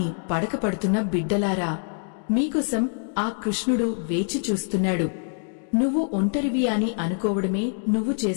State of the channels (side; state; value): right; silent; 57 dB below the other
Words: పడకపడుతున్న బిడ్డలారా, మీకోసం ఆ కృష్ణుడు వేచి చూస్తున్నాడు. నువ్వు ఒంటరివి అని అనుకోవడమే నువ్వు